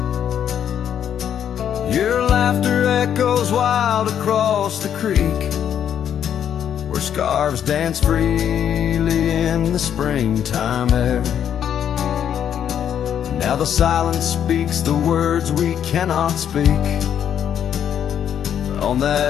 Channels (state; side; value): quieter; right; 9.2 dB